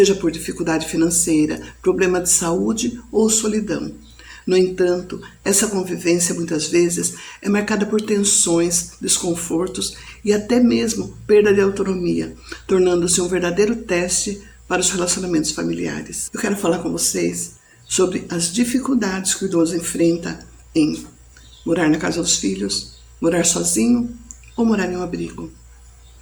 por dificuldade financeira, problema de saúde ou solidão. No entanto, essa convivência muitas vezes é marcada por tensões, desconfortos e até mesmo perda de autonomia, tornando-se um verdadeiro teste para os relacionamentos familiares. Eu quero falar com vocês sobre as dificuldades que o idoso enfrenta em morar na casa dos filhos, morar sozinho ou morar em um abrigo.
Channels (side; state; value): both; identical; correlation 1.00